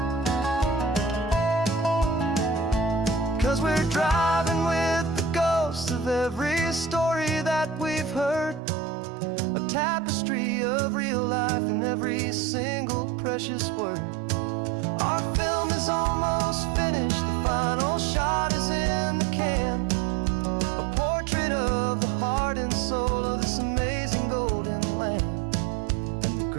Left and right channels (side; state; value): left; drops out; at 8.6 s